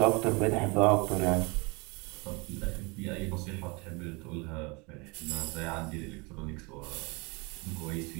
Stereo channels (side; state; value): left; quieter; 28.2 dB